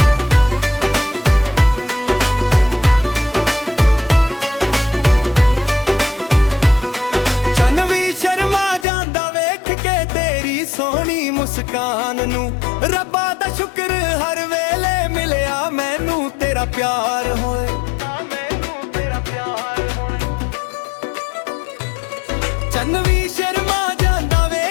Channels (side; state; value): right; drops out; at 8.8 s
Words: ਚੰਨ ਵੀ ਸ਼ਰਮਾ ਜਾਂਦਾ ਵੇਖ ਕੇ ਤੇਰੀ ਸੋਹਣੀ ਮੁਸਕਾਨ ਨੂੰ, ਰੱਬਾ ਦਾ ਸ਼ੁਕਰ ਹਰ ਵੇਲੇ ਮਿਲਿਆ ਮੈਨੂੰ ਤੇਰਾ ਪਿਆਰ ਹੋਏ। ਚੰਨ ਵੀ ਸ਼ਰਮਾ ਜਾਂਦਾ